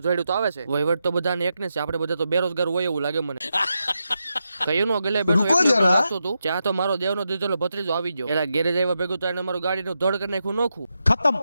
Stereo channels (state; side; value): inverted; both; correlation -0.86